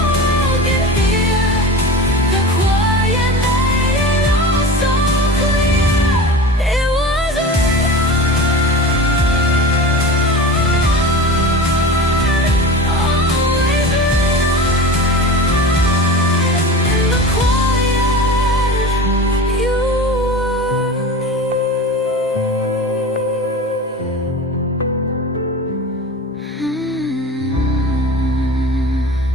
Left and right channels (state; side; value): normal; both; correlation 0.33